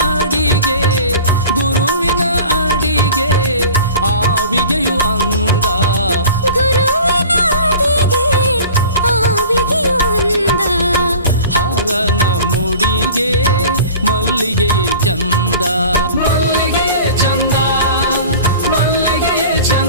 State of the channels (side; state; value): both; inverted; correlation -0.41